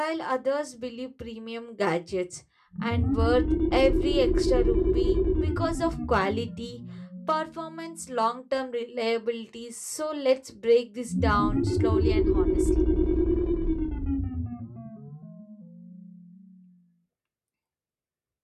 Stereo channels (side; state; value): both; identical; correlation 1.00